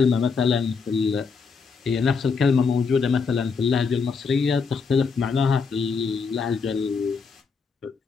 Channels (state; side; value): quieter; right; 5.2 dB